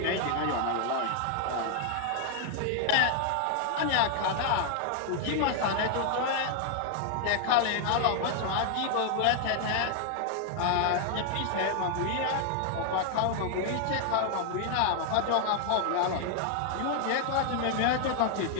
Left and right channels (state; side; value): different; both; correlation 0.00